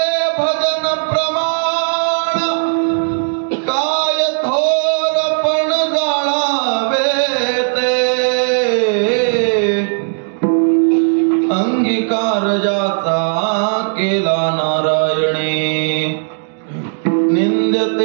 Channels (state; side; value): silent; left; digital silence